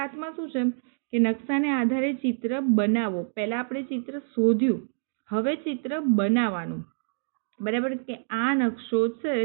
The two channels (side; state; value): left; silent; digital silence